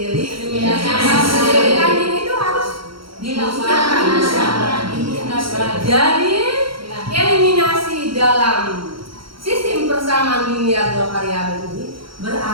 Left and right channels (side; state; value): left; late; 0.74 ms